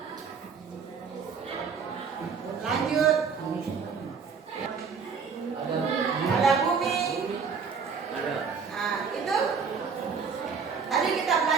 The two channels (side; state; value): left; quieter; 5.8 dB